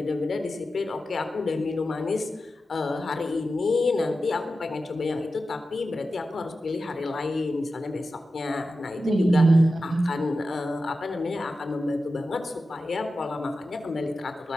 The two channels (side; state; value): both; normal; correlation 0.92